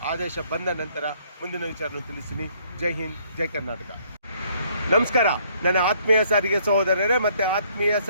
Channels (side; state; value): both; inverted; correlation -0.65